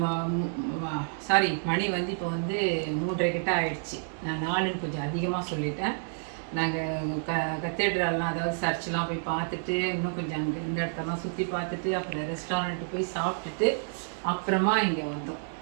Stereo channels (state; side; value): silent; left; 58 dB below the other